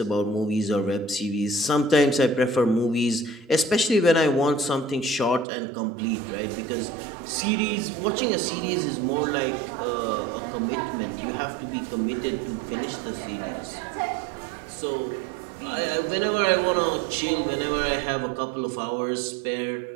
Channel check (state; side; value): drops out; left; at 5.5 s